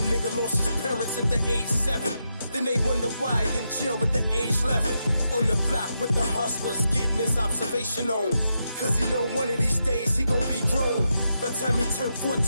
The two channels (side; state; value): both; inverted; correlation -0.84